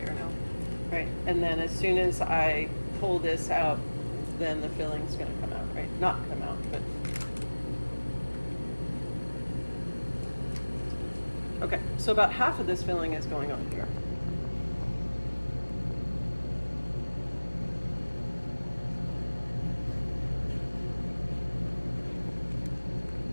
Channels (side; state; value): both; inverted; correlation -1.00